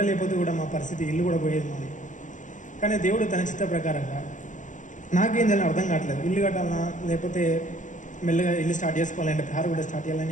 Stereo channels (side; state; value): right; late; 0.37 ms